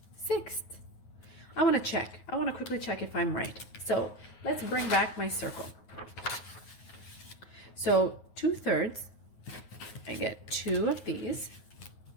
I want to check. I want to quickly check if I'm right. So let's bring back my circle. So 2/3, I get 2 of these.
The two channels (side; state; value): right; late; 9.4 ms